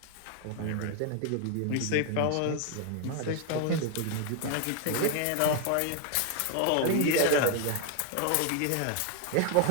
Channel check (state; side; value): different; both; correlation 0.01